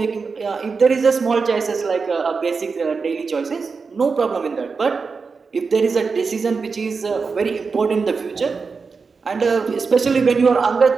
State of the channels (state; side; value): quieter; left; 4.9 dB